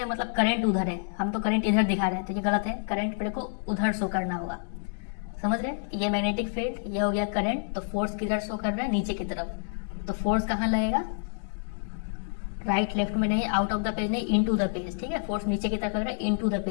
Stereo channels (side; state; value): right; silent; digital silence